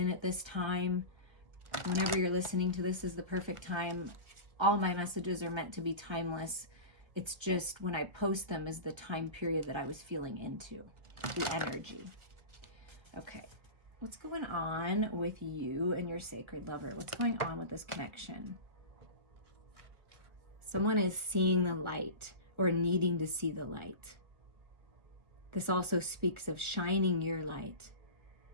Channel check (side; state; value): left; late; 1.5 ms